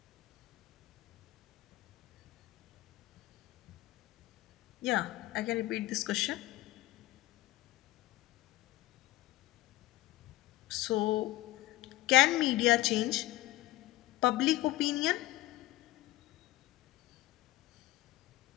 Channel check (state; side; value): quieter; right; 17.7 dB